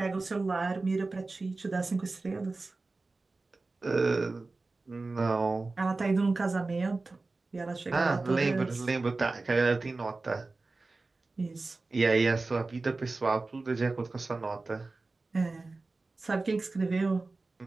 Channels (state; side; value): quieter; left; 3.5 dB